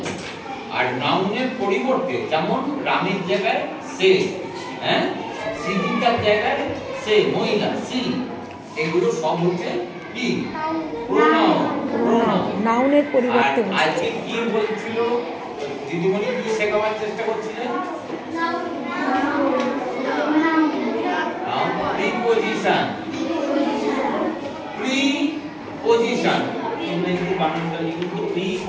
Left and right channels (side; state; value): both; identical; correlation 1.00